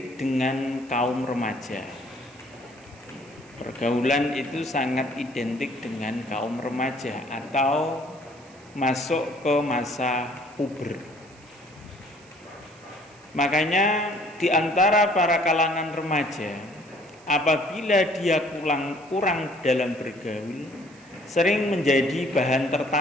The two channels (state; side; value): noise; right; hiss, 27 dB below the sound